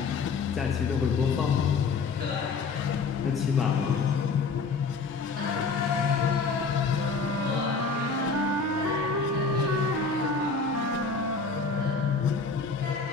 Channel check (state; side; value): quieter; right; 4.6 dB